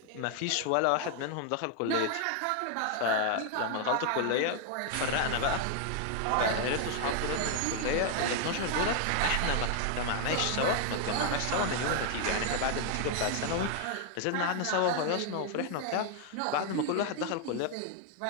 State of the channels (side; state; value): both; different; correlation 0.00